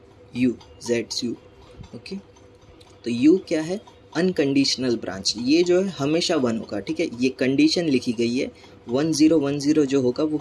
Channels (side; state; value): both; identical; correlation 1.00